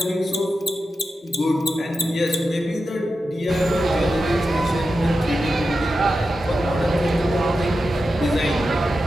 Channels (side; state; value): both; normal; correlation 0.90